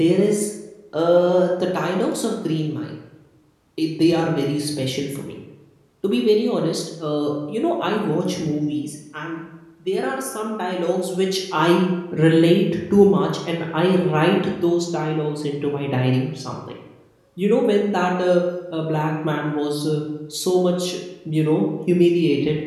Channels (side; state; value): both; identical; correlation 1.00